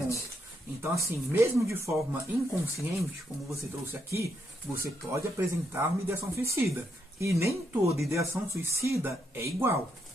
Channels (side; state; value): both; normal; correlation 0.78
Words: Então, assim, mesmo de forma inconsciente, como você trouxe aqui, você pode apresentar uma ideação suicida. E nem toda ideação suicida é igual.